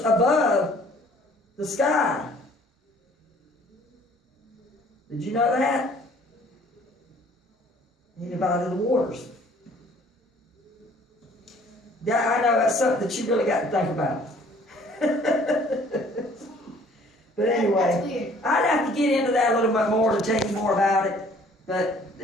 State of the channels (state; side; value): normal; both; correlation 0.56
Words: the sky. Did you know that? He divided the waters. Yeah, I know that's something that you really got to think about. But anyway, I'd have to get into that a little bit more to tell you more about it, but